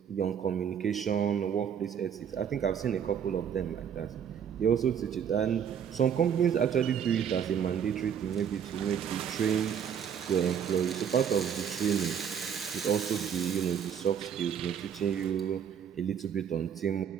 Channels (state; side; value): quieter; left; 8.2 dB